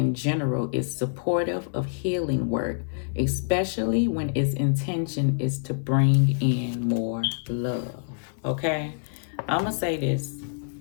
general is supportive of healing work, especially when its intention is to bring in more love. Okay? I'm going to say this.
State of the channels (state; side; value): silent; right; 61 dB below the other